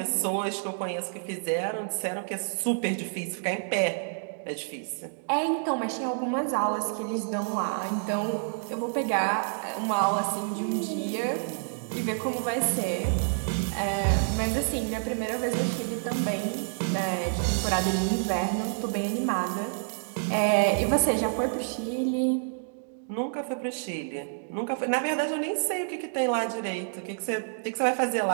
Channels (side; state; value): left; silent; digital silence